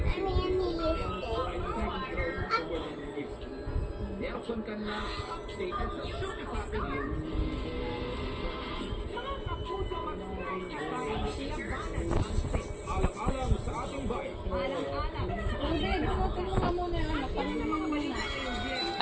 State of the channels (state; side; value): identical; both; correlation 1.00